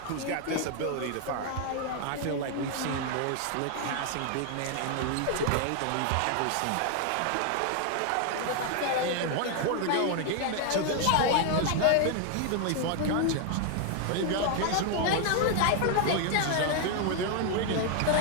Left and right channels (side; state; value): both; different; correlation 0.00